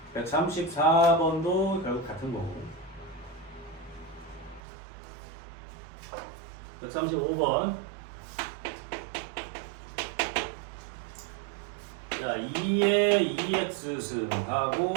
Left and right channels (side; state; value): left; drops out; at 4.6 s